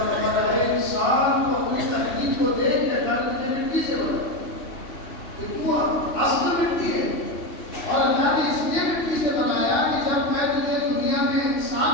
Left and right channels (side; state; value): right; late; 2.8 ms